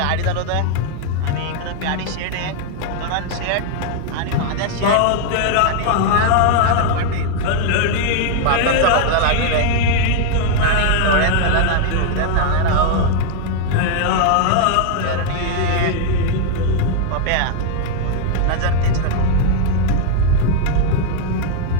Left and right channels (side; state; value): both; different; correlation 0.00